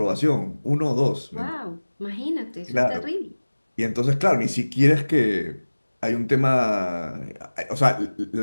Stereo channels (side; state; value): both; inverted; correlation -1.00